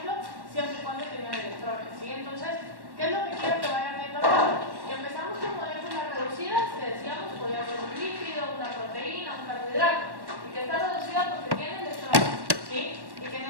siempre y cuando tengan electrones, ¿sí? Entonces, ¿qué es lo que quiero que vayan viendo acá? Y empezamos con moléculas reducidas, que decíamos podía ser un lípido, una proteína, un carbohidrato, y que está reducida porque tiene electrones, ¿sí? Y que en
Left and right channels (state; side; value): late; left; 1.1 ms